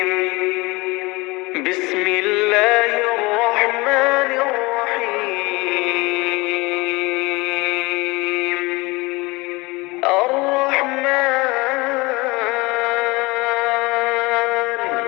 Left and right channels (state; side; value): quieter; right; 23.8 dB